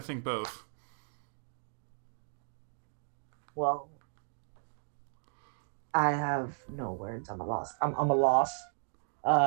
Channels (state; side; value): silent; left; digital silence